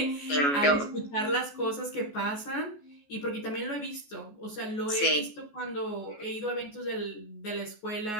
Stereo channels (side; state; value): right; late; 14 ms